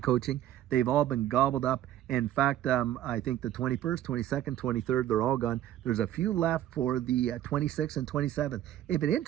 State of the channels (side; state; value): left; quieter; 12.2 dB